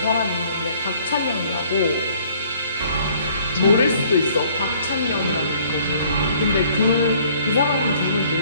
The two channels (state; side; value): inverted; both; correlation -0.59